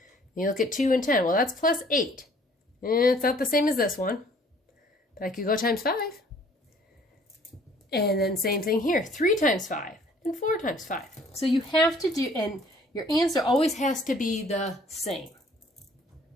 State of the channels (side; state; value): both; normal; correlation 0.57